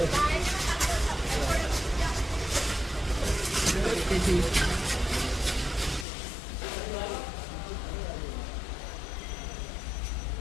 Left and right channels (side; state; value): right; drops out; at 6.1 s